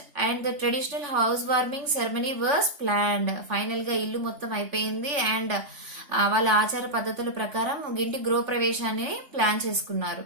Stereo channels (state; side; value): late; left; 3.5 ms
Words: and the traditional housewarming ceremony was planned. Final గా ఇల్లు మొత్తం అయిపోయింది అండ్ వాళ్ళ ఆచార పద్ధతుల ప్రకారం ఇంటి గృహప్రవేశాన్ని ప్లాన్ చేసుకున్నారు.